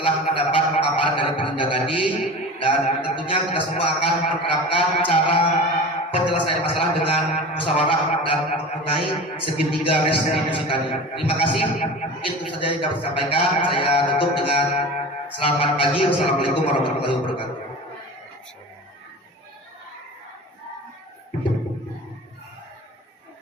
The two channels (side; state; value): both; normal; correlation 0.34